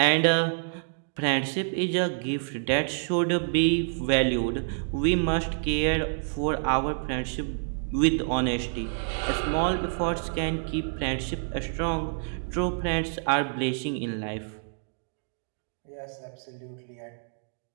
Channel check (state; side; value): silent; left; digital silence